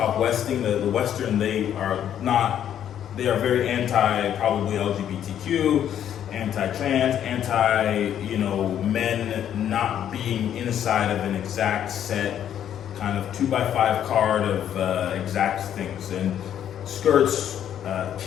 Westing, the Western, they are very anti probably LGBTQ, anti-trans, men not being inside of an exact set kind of 2x5 card of exact things. And skirts,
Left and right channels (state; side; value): quieter; right; 10.0 dB